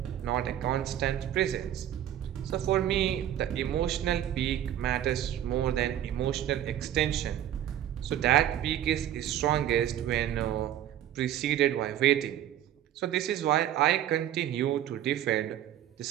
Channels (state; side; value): quieter; left; 11.4 dB